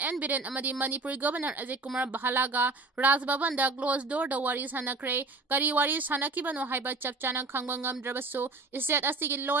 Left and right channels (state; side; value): quieter; left; 3.5 dB